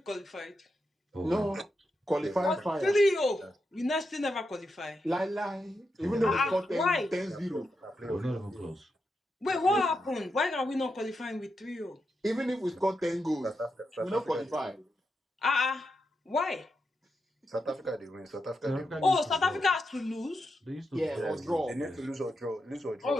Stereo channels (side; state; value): both; normal; correlation 0.86